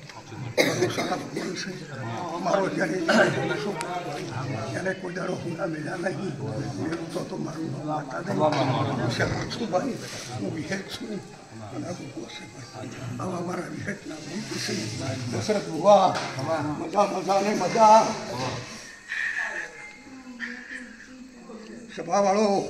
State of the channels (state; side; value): identical; both; correlation 1.00